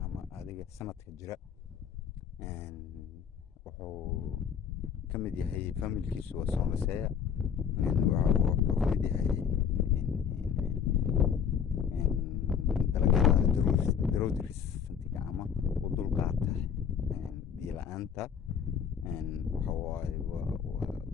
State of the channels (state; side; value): quieter; right; 7.6 dB